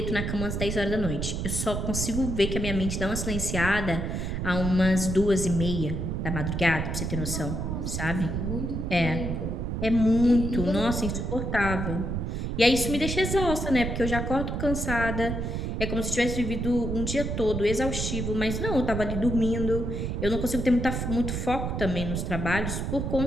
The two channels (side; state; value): right; noise; rumble, 2 dB below the sound